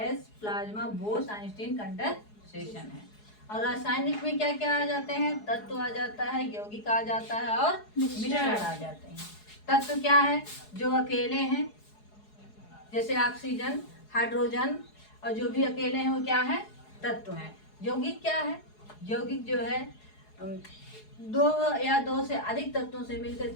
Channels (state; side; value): late; right; 4.8 ms